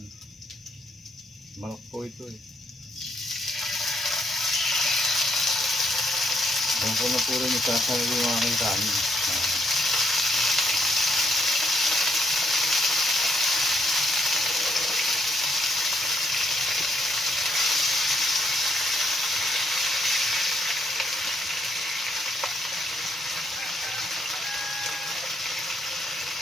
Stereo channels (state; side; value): normal; both; correlation 0.74